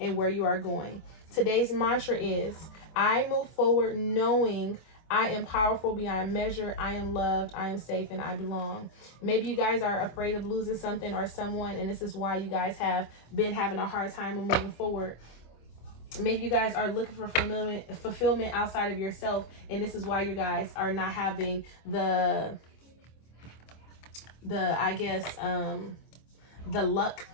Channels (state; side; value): late; right; 25 ms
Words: where you are going. Today's mantra is, I move forward knowing I am powerful beyond measure. I am loved. I am safe, and I belong. Maybe you guys are afraid of losing something or someone, and this is why you guys have been having a hard time moving forward. Maybe you guys are looking for fulfillment outside of yourself, and this is why you guys are not having the luck